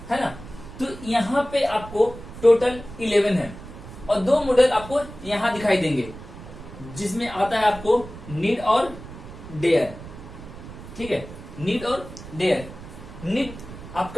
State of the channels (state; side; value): noise; right; rumble, 14 dB below the sound